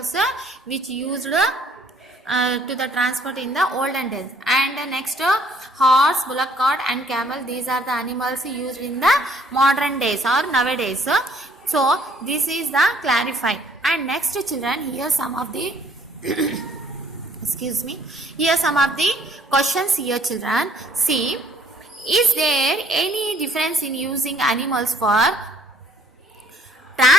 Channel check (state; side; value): normal; both; correlation 0.61